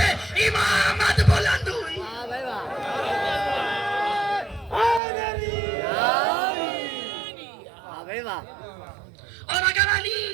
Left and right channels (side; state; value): left; drops out; at 5.0 s